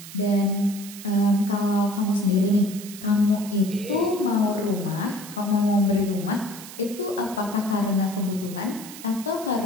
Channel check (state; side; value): noise; right; hiss, 14 dB below the sound